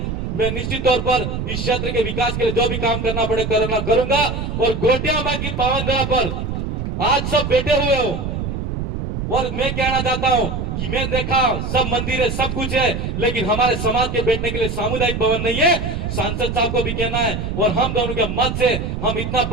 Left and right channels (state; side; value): noise; right; rumble, 3 dB below the sound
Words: मैं निश्चित तौर पर इस क्षेत्र के विकास के लिए जो भी काम करना पड़े करूंगा। और गोटिया माँ की पावन धरा पर आज सब बैठे हुए हो और मैं कहना चाहता हूं कि मैं देखा सब मंदिर है, सब कुछ है, लेकिन हमारे समाज के बैठने के लिए सामुदायिक भवन नहीं है। सांसद साहब को भी कहना है और हम दोनों के मत से हम इतना